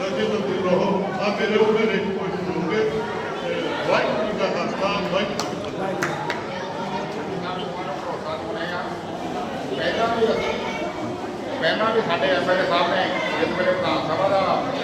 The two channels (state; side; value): identical; both; correlation 1.00